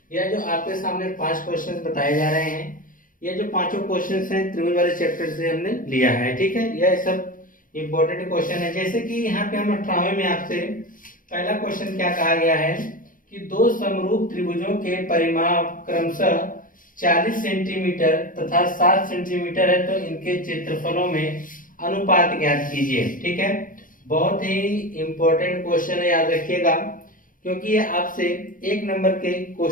यह जो आपके सामने 5 क्वेश्चन बताए जा रहे हैं, ये जो पांचों क्वेश्चंस हैं त्रिभुज वाले चैप्टर से हमने लिया है, ठीक है। यह सब इंपॉर्टेंट क्वेश्चन है। जैसे कि यहाँ पे हम 18वें में आपसे पहला क्वेश्चन क्या कहा गया है कि दो समरूप त्रिभुजों के परिमाप क्रमशः 40 सेंटीमीटर तथा 7 सेंटीमीटर है, तो इनके क्षेत्रफलों में अनुपात ज्ञात कीजिए, ठीक है। बहुत ही इंपॉर्टेंट क्वेश्चन है, याद रखिएगा, क्योंकि ये आपसे 1 नंबर के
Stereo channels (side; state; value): right; late; 0.39 ms